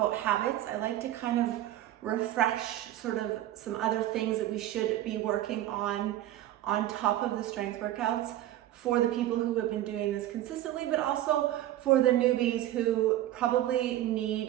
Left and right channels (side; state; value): left; quieter; 13.6 dB